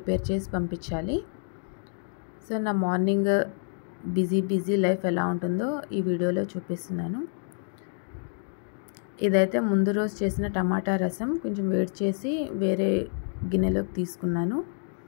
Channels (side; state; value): right; silent; digital silence